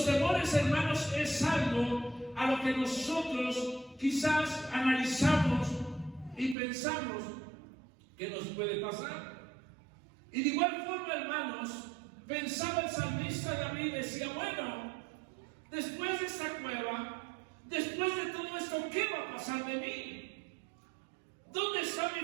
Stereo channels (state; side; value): drops out; left; at 6.6 s